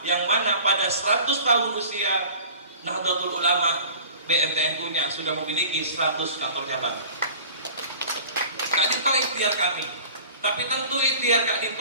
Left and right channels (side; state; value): both; inverted; correlation -0.43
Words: yang mana pada 100 tahun usia Nahdlatul Ulama BNTNU-nya sudah memiliki 100 kantor cabang. Kak Dinto ikhtiar kami, tapi tentu ikhtiar Kak